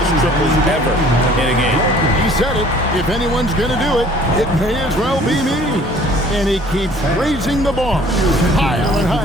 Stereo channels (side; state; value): both; normal; correlation 0.53